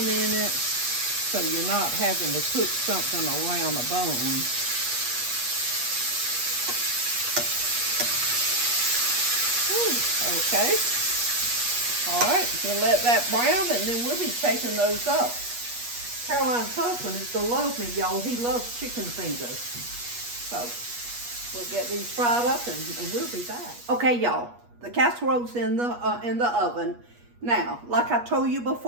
in it, so you're not having to cook something around a bone. Okay. All right, we'll let that brown, and then we'll be taking those up. Caroline's husband is gonna love me, y'all. He loves chicken fingers. So we'll get these fried up, and we'll be back. Okay, y'all. The casserole's in the oven. Now, like I told you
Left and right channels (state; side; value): late; left; 8.3 ms